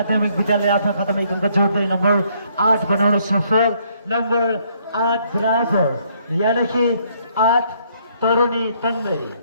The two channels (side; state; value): both; inverted; correlation -0.68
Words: विद्यालय आफ्नो खातामा एक अङ्क जोड्दै नम्बर 8 बनाउन सफल। नम्बर 8 बराबर यानिकि 8 तरुणी तन्दै।